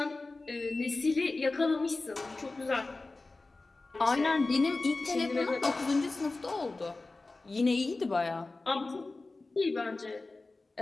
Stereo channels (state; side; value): quieter; right; 3.4 dB